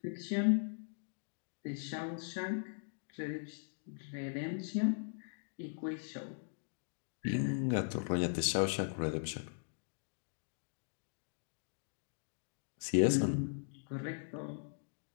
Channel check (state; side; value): silent; right; digital silence